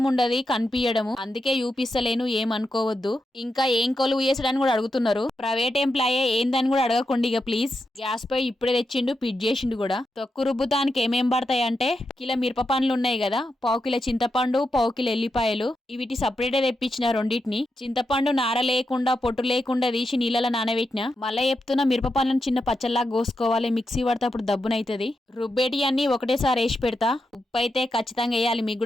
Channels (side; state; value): both; normal; correlation 0.86